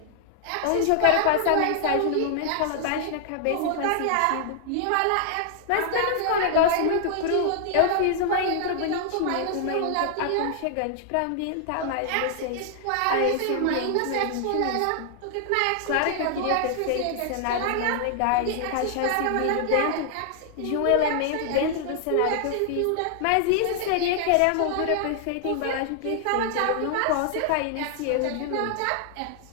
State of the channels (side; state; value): both; different; correlation 0.00